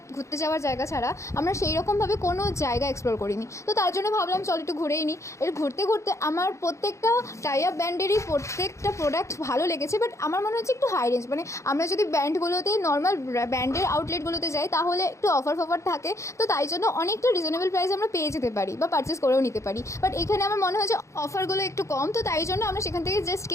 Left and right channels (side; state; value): right; late; 0.14 ms